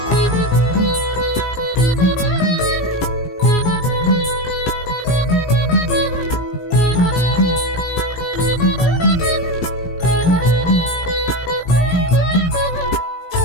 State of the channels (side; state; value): right; late; 17 ms